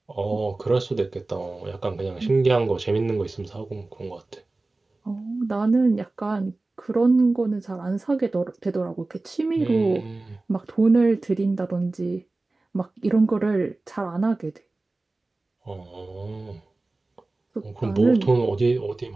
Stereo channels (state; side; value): quieter; left; 3.2 dB